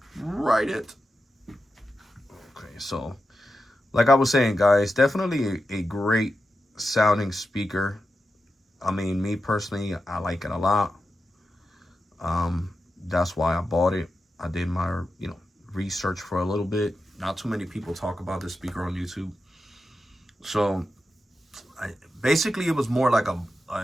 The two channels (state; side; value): normal; both; correlation 0.90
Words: write it. Okay, so like I was saying, guys, definitely a great sounding speaker. I mean, me personally, I like it a lot. That's why I bought it. I did my, you know, research for a little bit. Not too many people talk about this speaker on YouTube. So basically, it was more like